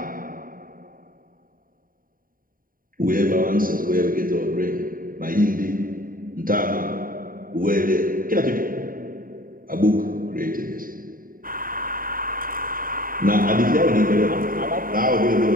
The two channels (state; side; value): late; left; 0.41 ms